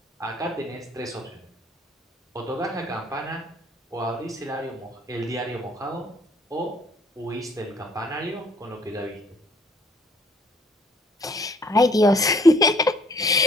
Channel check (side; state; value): both; normal; correlation 0.59